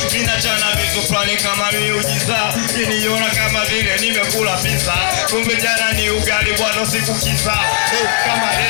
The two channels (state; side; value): silent; right; digital silence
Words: ninachana vitu fulani kama miujiza niliona kama vile nimekula pizza kumbe jana ni ugali bwana sikukiza kama